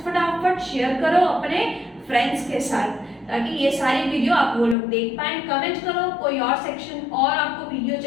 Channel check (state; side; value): drops out; right; at 4.8 s